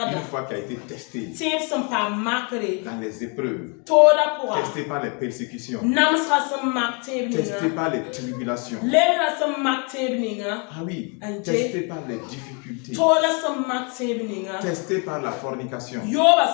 foi qui a été testée dans les épreuves. Testée par les persécutions. Testée par les tribulations. Ah oui, testée par les difficultés. Testée par la fornication. Mais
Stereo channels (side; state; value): right; quieter; 35.0 dB